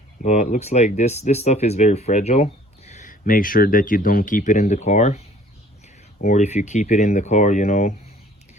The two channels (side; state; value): both; normal; correlation 0.54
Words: But it looks like this stuff is very fragile. Make sure that you don't keep it in the car, or if you keep it in the car, you know,